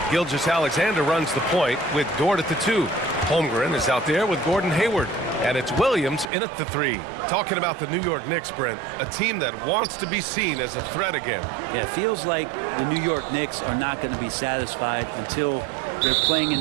Gilgeous-Alexander runs the point with Dort at the 2. Holmgren is out there with Gordon Hayward. And it's Williams in at the 3. Talking about the New York Knicks, Brent, a team that wants to be seen as a threat again. Yeah, it feels like the New York Knicks are not going to be satisfied until they're playing in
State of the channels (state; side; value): drops out; left; at 6.2 s